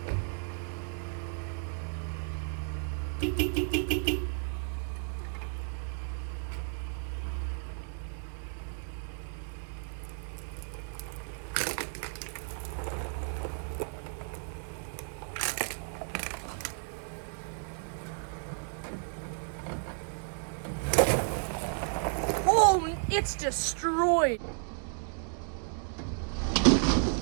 Oh, it's destroyed.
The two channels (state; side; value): silent; left; 56 dB below the other